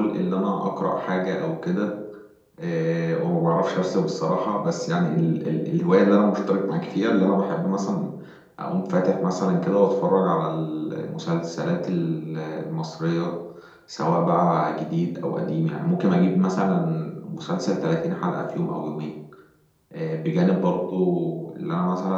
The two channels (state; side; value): identical; both; correlation 1.00